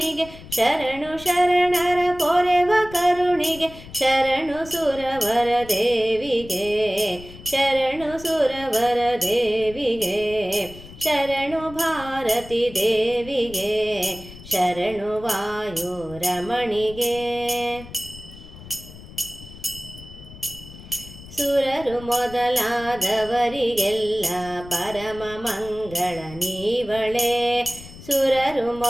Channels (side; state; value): left; noise; rumble, 17 dB below the sound